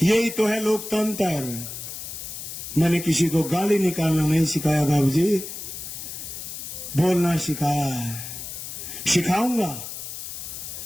यही तो है लोकतंत्र। मैंने किसी को गाली निकालना नहीं सिखाया बाबूजी, बोलना सिखाया है। सिखाऊंगा,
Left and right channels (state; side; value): noise; left; hiss, 9 dB below the sound